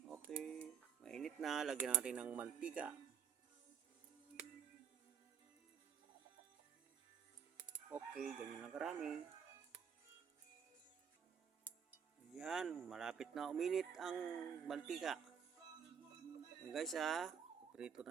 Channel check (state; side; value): quieter; left; 7.3 dB